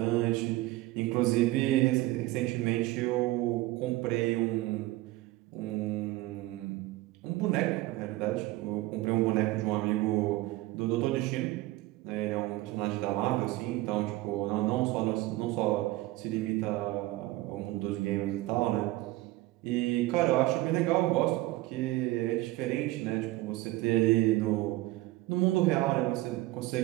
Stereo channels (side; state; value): left; quieter; 18.3 dB